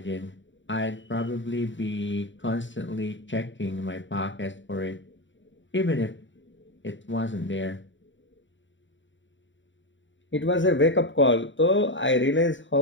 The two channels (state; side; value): late; right; 0.55 ms